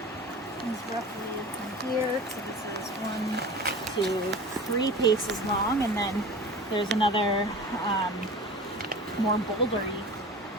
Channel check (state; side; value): normal; both; correlation 0.36